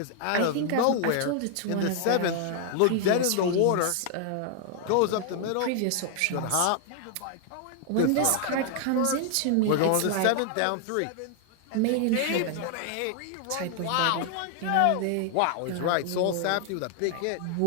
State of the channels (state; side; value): different; both; correlation 0.00